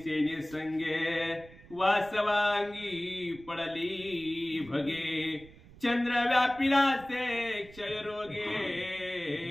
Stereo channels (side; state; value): right; noise; rumble, 21 dB below the sound